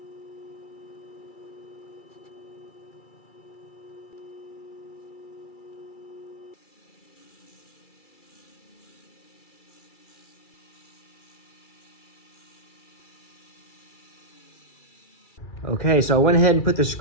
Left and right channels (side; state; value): right; late; 2.3 ms